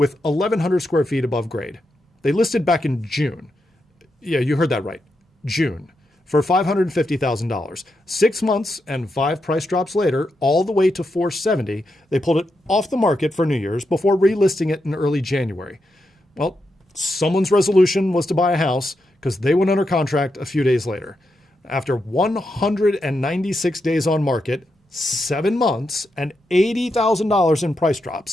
1,100 square feet above grade. They listed back in June. Yeah, you heard that right. June. For $550,000. 6 months and 5 price drops later, all the way to $470,000, they pulled it off the market for New Year's before relisting it in early January. Well, someone's resolution was to buy a house because they went under contract a few days later. After 196 days on market, 7 months, and $80,000 in price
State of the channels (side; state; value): both; normal; correlation 0.85